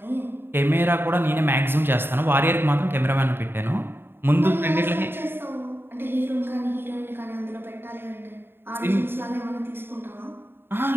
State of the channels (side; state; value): left; late; 0.11 ms